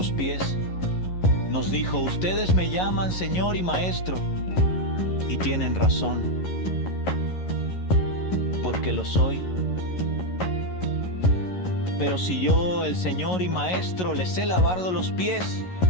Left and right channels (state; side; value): late; right; 11 ms